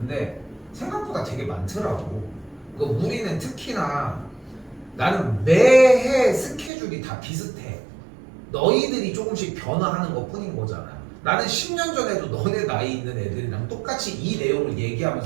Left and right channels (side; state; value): left; drops out; at 6.7 s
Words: 생각보다 되게 많더라고. 그 우리는 특히나 나는 매해 스케줄이 다 비슷해. 너희들이 조금씩 변화하는 것 뿐인 거잖아. 나는 10년 전에도 너네 나이 있는 애들이랑 똑같이 이 내용을